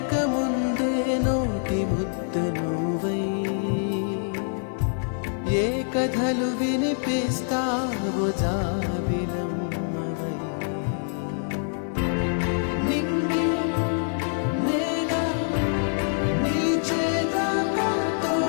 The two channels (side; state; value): right; silent; digital silence